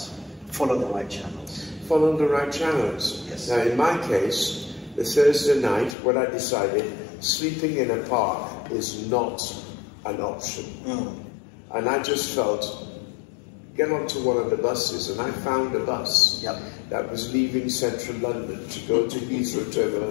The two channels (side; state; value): right; drops out; at 6.0 s